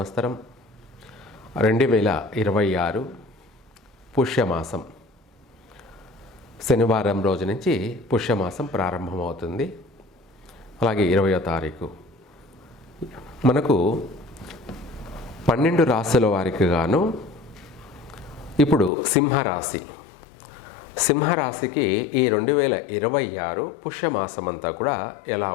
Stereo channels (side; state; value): right; drops out; at 18.9 s